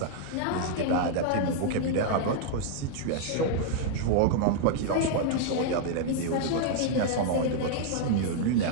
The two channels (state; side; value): different; both; correlation -0.01